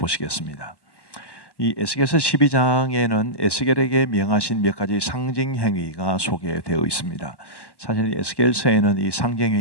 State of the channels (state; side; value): late; right; 1.1 ms